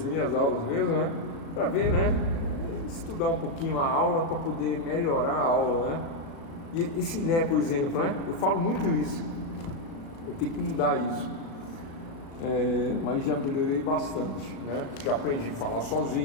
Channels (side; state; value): right; late; 36 ms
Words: aulas mesmo, né? Para ver, né? Estudar um pouquinho a aula para poder melhorar a aula, né? E esse né, por exemplo, né? Eu falo muito isso. Eu tenho que mudar isso. Mas já melhorei bastante, né? Já aprendi a falar